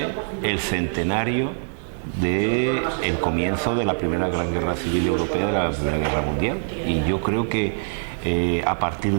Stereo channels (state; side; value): silent; left; digital silence